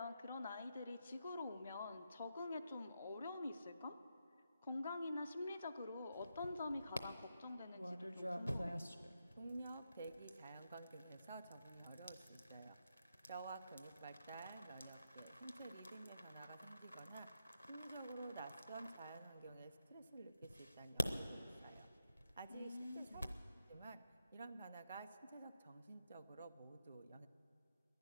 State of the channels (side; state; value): both; inverted; correlation -0.85